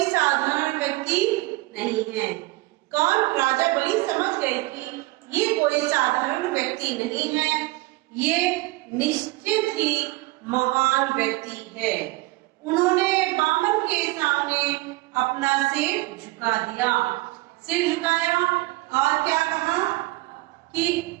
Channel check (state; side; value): quieter; left; 21.3 dB